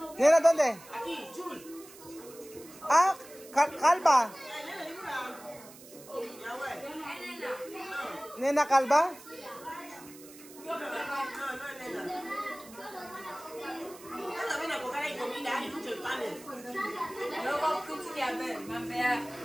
Nena, ¿dónde? Aquí, Jul. Ah, Calva. Nena Calva.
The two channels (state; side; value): noise; right; hiss, 19 dB below the sound